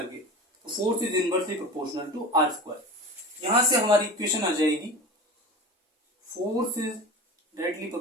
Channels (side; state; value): both; normal; correlation 0.33